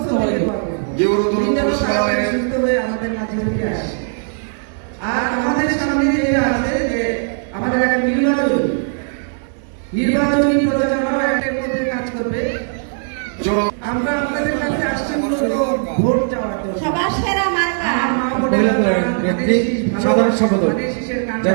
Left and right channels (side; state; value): left; silent; 64 dB below the other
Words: আর আমাদের সামনে যেটা আছে যে আমাদের একটা নির্বাচনী প্রচারণা একটা মধ্যে কাজ করবে। আমরা আপনাদের কাছে আসছি মূলত ভোট চাওয়ার জন্য। সবার সেরা মার্কা সাধারণ সম্পাদক